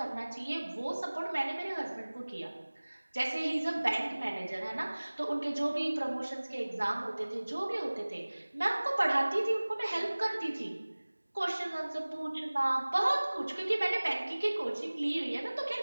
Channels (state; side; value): inverted; both; correlation -1.00